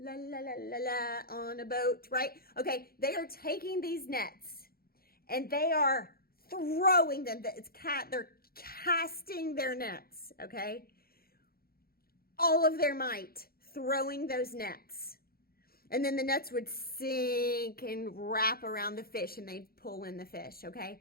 la, la, la, la, on a boat, right? Okay, they are taking these nets and they are throwing them. They're casting their nets, okay? All of their might, throwing those nets. And then the nets would sink and wrap around the fish and they'd pull in the fish,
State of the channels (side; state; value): right; late; 0.44 ms